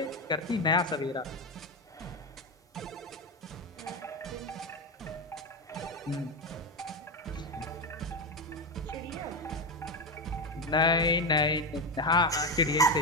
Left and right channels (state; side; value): normal; both; correlation 0.13